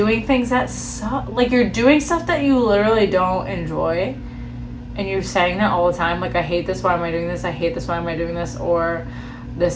things that like, you're doing stuff that you literally don't enjoy and you're saying that all the time, like, I hate this, why am I doing this? I hate this, why am I doing this? Or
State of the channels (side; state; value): both; identical; correlation 1.00